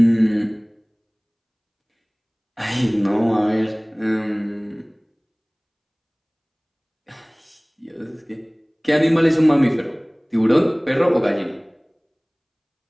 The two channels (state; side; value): identical; both; correlation 1.00